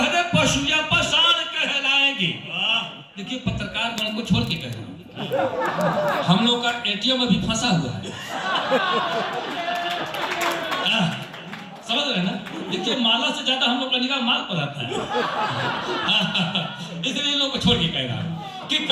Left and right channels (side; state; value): both; identical; correlation 1.00